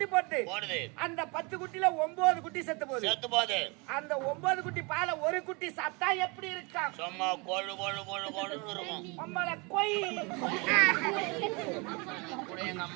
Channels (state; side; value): quieter; left; 29.3 dB